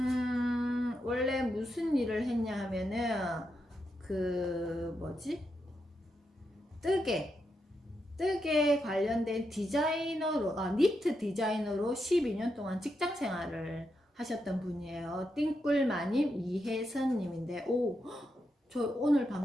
원래 무슨 일을 했냐 하면은 그 뭐지? 뜨개 관련된 디자이너로 니트 디자이너로 12년 동안 직장 생활을 하셨던 분이에요. 띵꿀마님 이혜선님인데 저 오늘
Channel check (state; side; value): normal; both; correlation 0.84